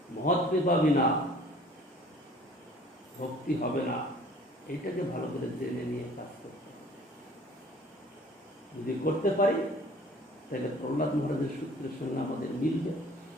মহৎ কৃপা বিনা ভক্তি হবে না। এইটাকে ভালো করে জেনে নিয়ে কাজ করতে হবে। যদি করতে পারি তাহলে প্রহ্লাদ মহারাজের সূত্রের সঙ্গে আমাদের মিলবে,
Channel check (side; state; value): both; normal; correlation 0.51